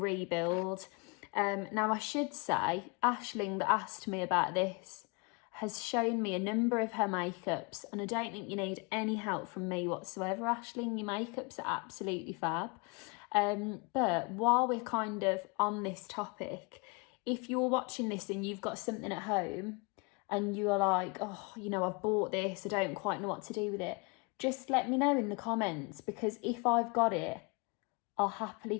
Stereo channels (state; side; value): quieter; right; 30.2 dB